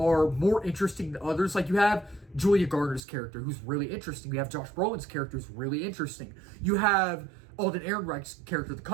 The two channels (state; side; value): drops out; left; at 3.0 s